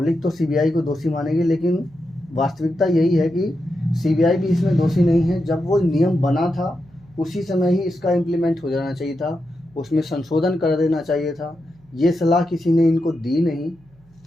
तो सीबीआई को दोषी मानेगी, लेकिन वास्तविकता यही है कि सीबीआई भी इसमें दोषी नहीं है। जब वो नियम बना था उसी समय ही इसका इम्प्लीमेंट हो जाना चाहिए था, उसमें संशोधन कर देना चाहिए था। ये सलाह किसी ने इनको दी नहीं,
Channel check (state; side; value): noise; right; hum, 30 dB below the sound